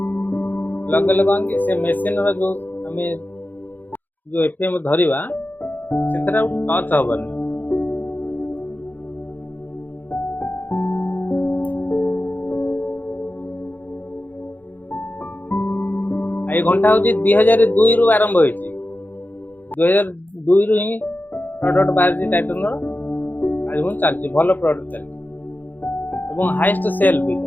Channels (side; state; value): right; late; 0.086 ms